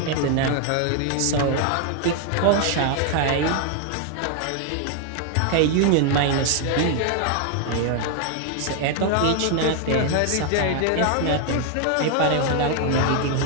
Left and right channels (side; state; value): both; different; correlation 0.00